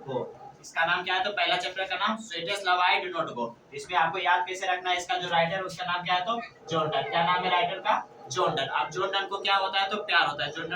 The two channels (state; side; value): identical; both; correlation 1.00